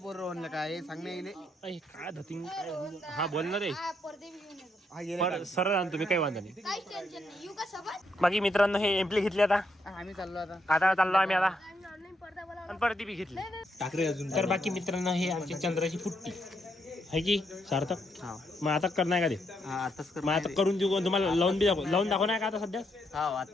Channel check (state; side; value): normal; both; correlation 0.77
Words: म्हणलं काय सांग नाही येईल काय धतिंग हा बोल ना रे पडदे बी घेऊन येतो पर सरळ आणतो मी काही वांधा नाही काहीच टेन्शन नाही येऊ का सोबत बाकी मित्रांनो हे एम्प्ली घेतली आता आम्ही चाललो आता आता चाललो आम्ही आता आणि ऑनलाईन पडदा बोला आणि परत ती बी घेतली टाकरे अजून तर बाकी मित्रांनो हे आमची चंद्राची फुट्टी आहे की सार्थक हा मग आता करणार का ते आताच कर मग आता करून देऊ तुम्हाला लावून दाखवणार का आता सध्या हा